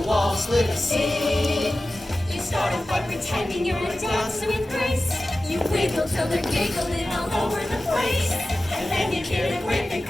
wall, split a seam. You start a fight pretending you're a dancer with grace. You wiggle till they're giggling all over the place. And then you get a whip and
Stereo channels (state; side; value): normal; both; correlation 0.95